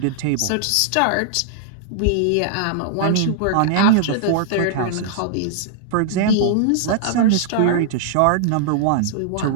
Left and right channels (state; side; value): different; both; correlation -0.01